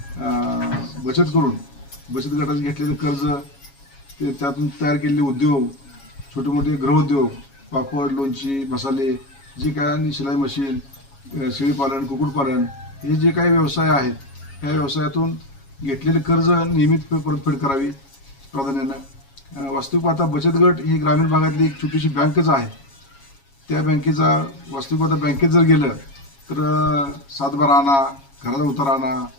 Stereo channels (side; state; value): right; late; 7.3 ms